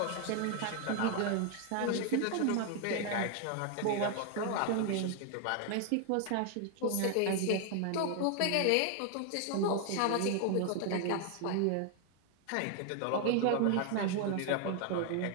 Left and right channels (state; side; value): different; both; correlation 0.00